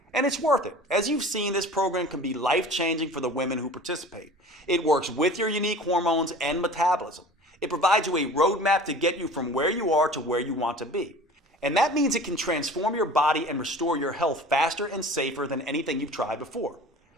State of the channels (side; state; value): both; normal; correlation 0.42